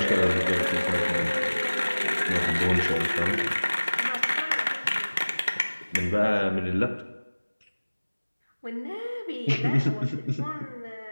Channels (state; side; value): inverted; both; correlation -1.00